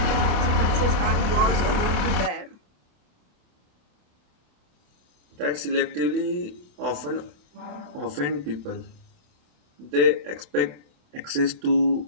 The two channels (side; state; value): left; late; 27 ms